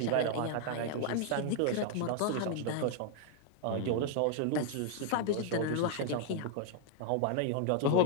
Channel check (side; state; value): both; different; correlation 0.00